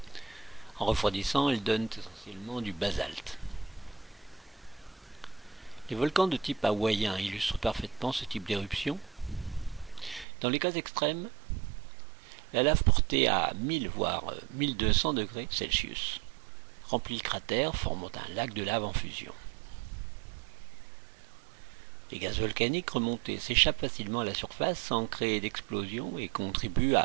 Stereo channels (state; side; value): drops out; left; at 10.2 s